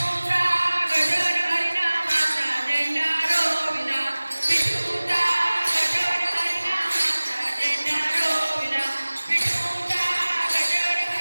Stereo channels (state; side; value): inverted; both; correlation -1.00